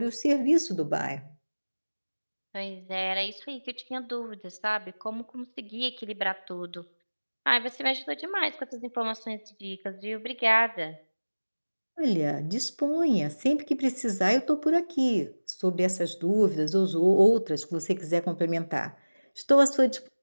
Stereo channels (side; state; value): both; inverted; correlation -1.00